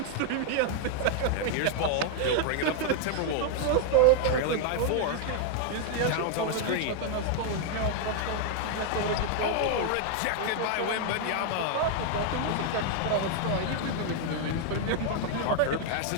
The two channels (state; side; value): different; both; correlation 0.00